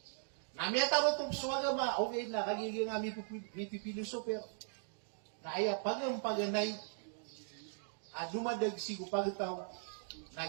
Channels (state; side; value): silent; left; digital silence